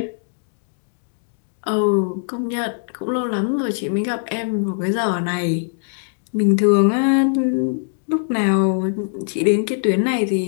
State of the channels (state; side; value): silent; right; digital silence